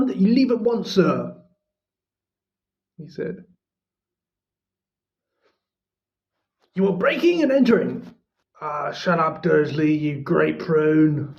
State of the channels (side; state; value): both; identical; correlation 1.00